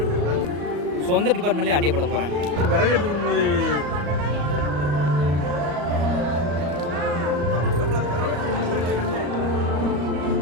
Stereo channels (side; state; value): left; late; 35 ms